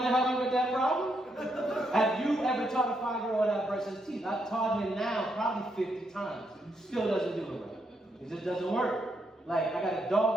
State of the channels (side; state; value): both; normal; correlation 0.78